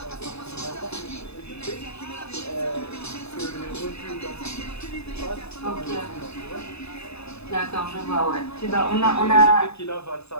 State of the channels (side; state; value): right; late; 0.79 ms